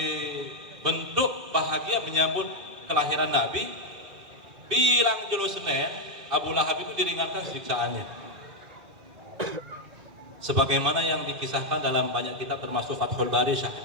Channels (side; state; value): left; late; 2.2 ms